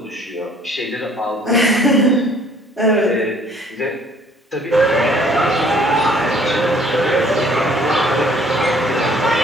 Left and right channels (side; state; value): both; normal; correlation 0.58